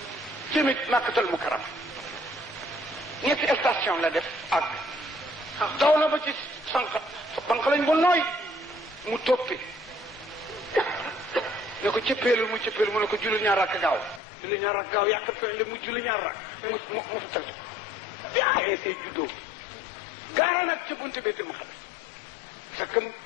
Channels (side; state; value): right; drops out; at 14.2 s